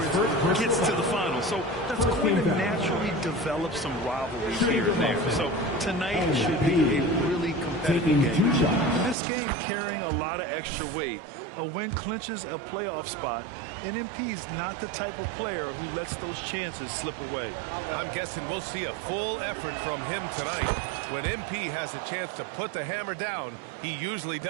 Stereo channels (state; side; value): drops out; left; at 9.2 s